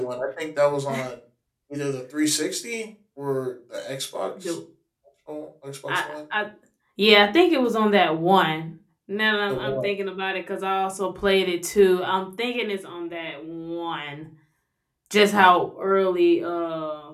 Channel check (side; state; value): both; identical; correlation 1.00